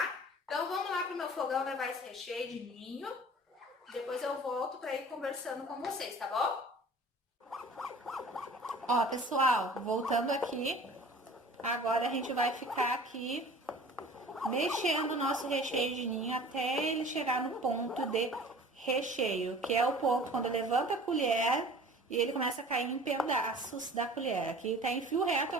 Então vamos lá pro meu fogão levar esse recheio de ninho. Depois eu volto para ir conversando com vocês, tá bom? Ó, pessoal, voltando aqui. Agora a gente vai ficar aqui mexendo o nosso recheio de ninho até ele chegar no ponto de recheio, que é o ponto quando levanta a colher e ele começa a cair em pedaços da colher. Aqui tá em fio reto, eu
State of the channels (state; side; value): normal; both; correlation 0.44